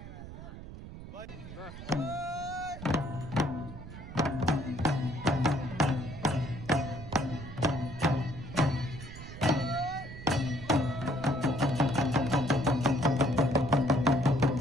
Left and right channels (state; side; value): noise; right; rumble, 12 dB below the sound